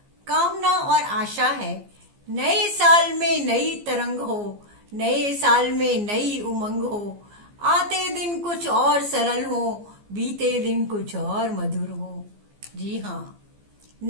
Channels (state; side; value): late; left; 15 ms